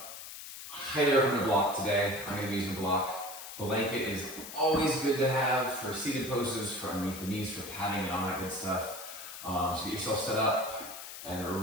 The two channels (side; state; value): left; noise; hiss, 11 dB below the sound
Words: highly recommend a block today. I'm going to be using a block. Blanket is always good to have for seated poses, for underneath the knees, for padding and all that good stuff. So get yourself set up and